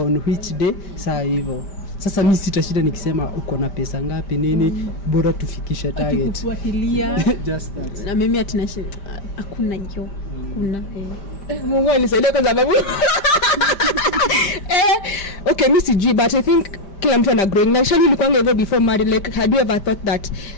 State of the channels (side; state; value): right; late; 5.1 ms